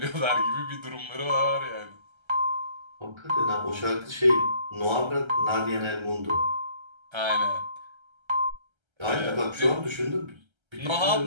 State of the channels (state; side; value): late; left; 1.3 ms